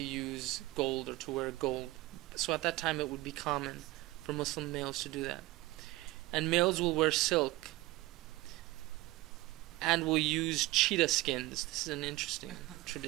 use gold or to wear gold. So at that time it would be common for Muslim males to do that. And males will wear silk and will use cheetah skins. This is an interesting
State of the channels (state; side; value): quieter; left; 19.1 dB